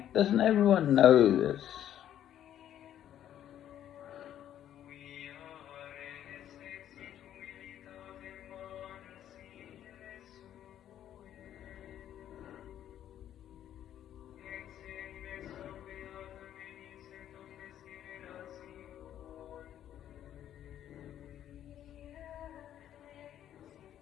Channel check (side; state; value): right; quieter; 11.0 dB